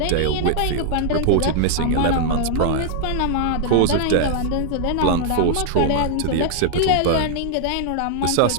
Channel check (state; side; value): different; both; correlation -0.01